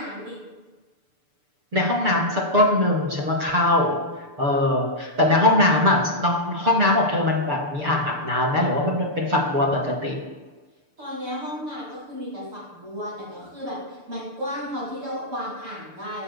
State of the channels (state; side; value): late; left; 6.8 ms